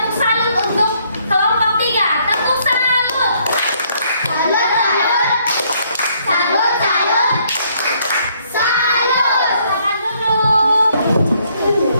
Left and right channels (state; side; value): inverted; both; correlation -0.68